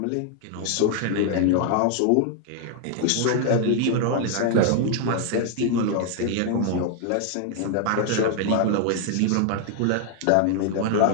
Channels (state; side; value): different; both; correlation 0.00